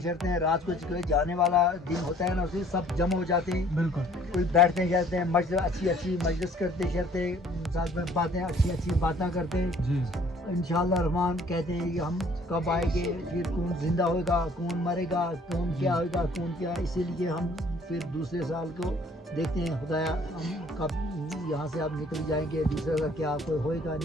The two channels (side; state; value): both; normal; correlation 0.57